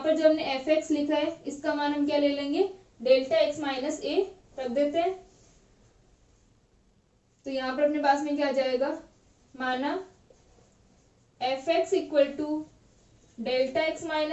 पर जो हमने एफ एक्स लिखा है इसका मान हम क्या ले लेंगे डेल्टा एक्स माइनस ए रख देते हैं। तो यहाँ पर अपने पास में क्या आ जाएगा माना f x equal to delta x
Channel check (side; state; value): both; identical; correlation 1.00